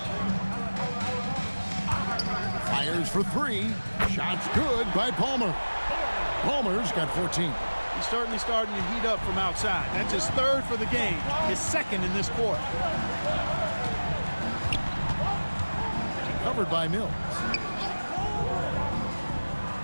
Fires for 3. Shots good by Palmer. Palmer's got 14. He's certainly starting to heat up from outside. That's his 3rd for the game, his 2nd in this quarter. Covered by Mills.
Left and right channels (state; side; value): inverted; both; correlation -1.00